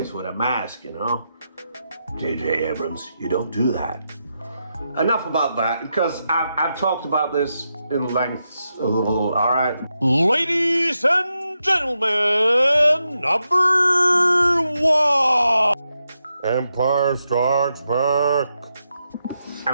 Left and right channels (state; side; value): inverted; both; correlation -0.86